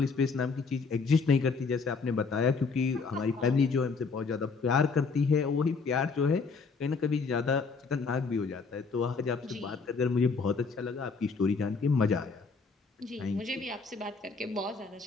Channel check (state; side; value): quieter; right; 4.7 dB